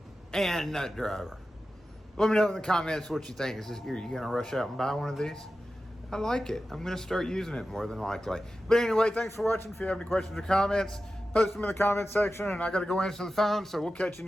and nut driver. Let me know in the comments what you think. Are you gonna rush out and buy one of these? I like it. I'm gonna start using it more than likely. But anyway, thanks for watching. If you have any questions or comments, post them in the comment section, and I gotta go answer the phone, so we'll catch you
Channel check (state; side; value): normal; both; correlation 0.93